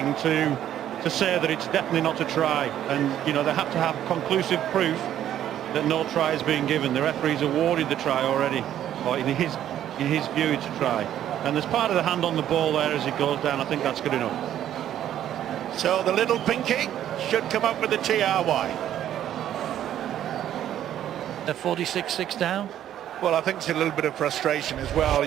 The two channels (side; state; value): left; quieter; 11.2 dB